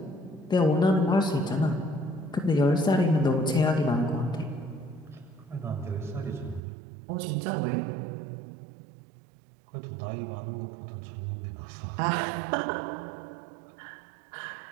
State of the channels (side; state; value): left; drops out; at 6.6 s